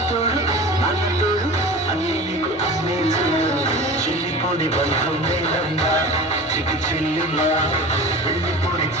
అన్నతోడు అన్ని నీకు అన్నే చెల్లిపోని బంధం నేనమ్మా చికి చెల్లిమ్మా వెళ్ళిపోని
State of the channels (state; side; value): normal; both; correlation 0.35